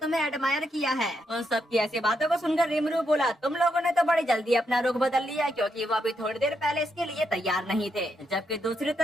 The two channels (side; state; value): both; normal; correlation 0.80